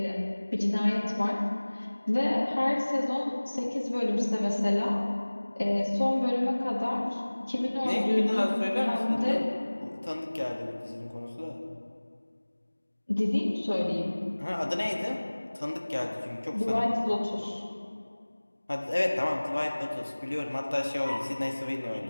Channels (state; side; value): inverted; both; correlation -1.00